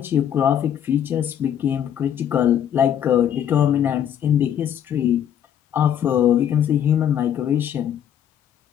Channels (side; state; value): right; quieter; 9.6 dB